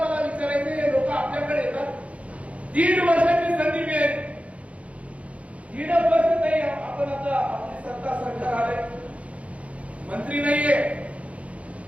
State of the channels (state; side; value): late; left; 0.064 ms